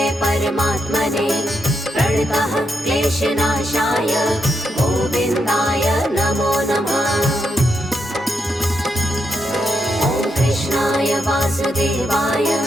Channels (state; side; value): normal; both; correlation 0.82